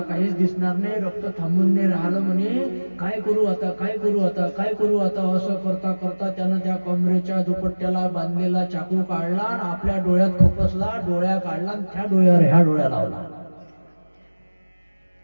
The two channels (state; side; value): inverted; both; correlation -1.00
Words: काहीच दिसणार नाही, रक्त थांबून नाही राहिलं म्हणे. काय करू आता? काय करू आता? काय करू आता? असं करता करता त्यानं त्या कमरेच्या दुपट्ट्याला बांधलेला चाकू काढला आणि आपल्या डोळ्यात खुपसला, डोळ्या काढला आणि त्या डोळ्यावर ह्या डोळ्या लावला.